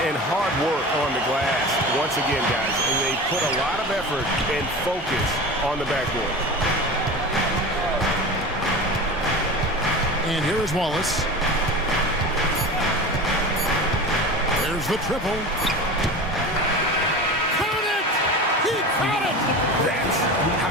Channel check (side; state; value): both; normal; correlation 0.32